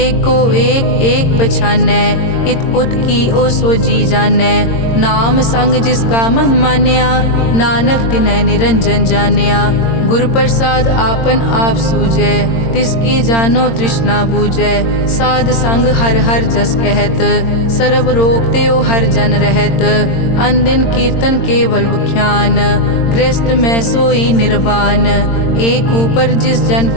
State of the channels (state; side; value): late; right; 22 ms